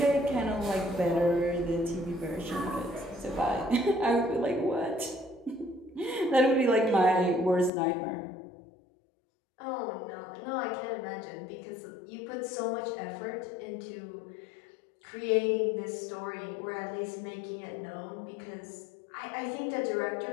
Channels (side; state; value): right; drops out; at 7.7 s